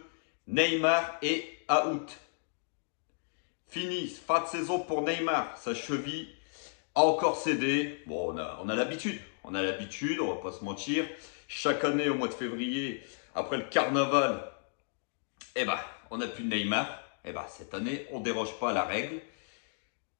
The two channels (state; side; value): silent; right; digital silence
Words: Neymar est out. Fini, fin de saison pour Neymar, sa cheville a encore cédé. Bon, on a l'habitude. On a l'habitude, on va pas se mentir. Chaque année, au mois de février, après le carnaval, on n'a plus de Neymar. Cette année, on déroge pas à la règle.